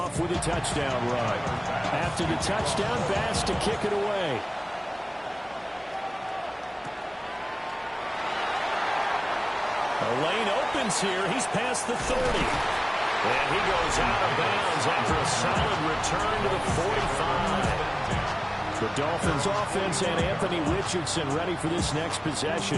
with a touchdown run. After the touchdown, Bass to kick it away. The lane opens here. He's past the 30. And he goes out of bounds after a solid return to the 45. The Dolphins offense and Anthony Richardson ready for this next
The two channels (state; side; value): identical; both; correlation 1.00